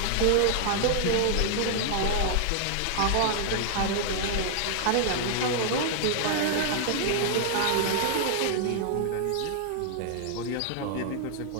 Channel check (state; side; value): different; both; correlation 0.00